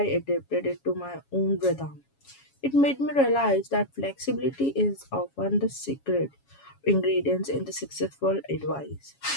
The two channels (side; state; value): right; late; 7.2 ms